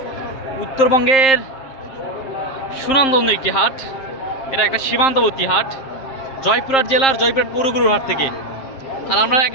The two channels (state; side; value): late; right; 7.5 ms